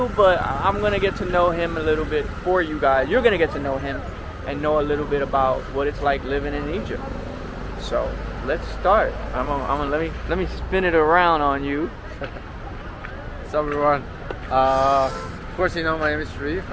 but I'm gonna get to know him a little bit for you guys. You're gonna get to know him and know a little bit about what it's like living in Egypt. So let's start. Let me spin it around on you. What's up everyone? Of course you know my name is Sherif.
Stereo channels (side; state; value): both; identical; correlation 1.00